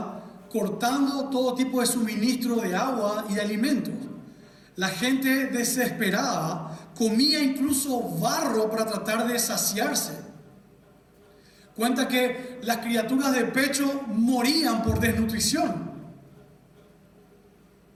cortando todo tipo de suministro de agua y de alimentos. La gente desesperada comía incluso barro para tratar de saciarse. Cuenta que las criaturas de pecho morían por desnutrición.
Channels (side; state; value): both; identical; correlation 1.00